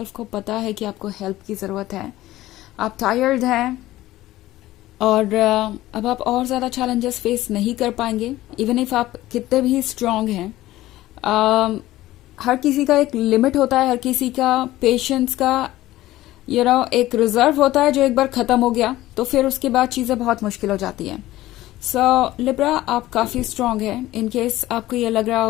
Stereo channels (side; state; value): right; quieter; 15.9 dB